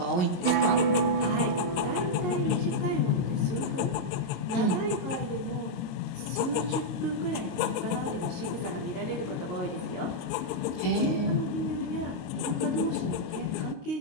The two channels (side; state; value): right; late; 22 ms